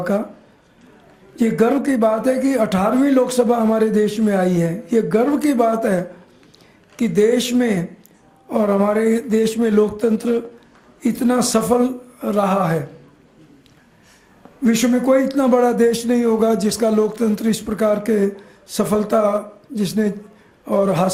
का। ये गर्व की बात है कि 18वीं लोकसभा हमारे देश में आई है। ये गर्व की बात है कि देश में और हमारे देश में लोकतंत्र इतना सफल रहा है। विश्व में कोई इतना बड़ा देश नहीं होगा जिसका लोकतंत्र इस प्रकार के सफलता जिसने और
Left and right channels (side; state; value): both; identical; correlation 1.00